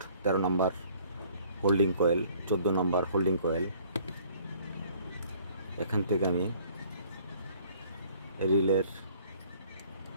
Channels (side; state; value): both; inverted; correlation -0.57